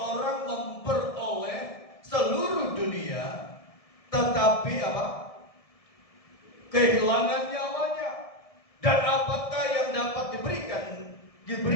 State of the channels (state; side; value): late; right; 1.7 ms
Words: memperoleh seluruh dunia tetapi apa? Kehilangan nyawanya. Dan apakah yang dapat